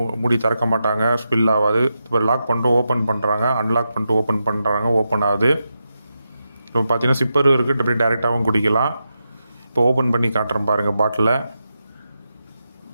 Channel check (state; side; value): inverted; both; correlation -0.88